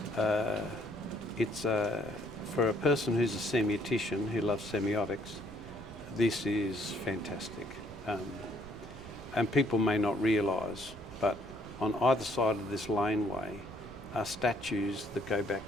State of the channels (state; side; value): noise; right; rumble, 17 dB below the sound